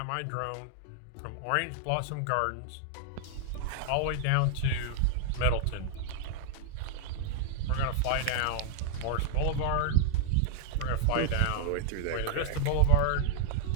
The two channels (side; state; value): both; different; correlation -0.01